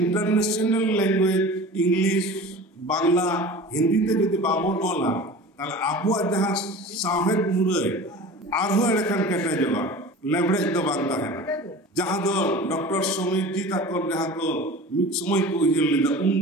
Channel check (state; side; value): normal; both; correlation 0.37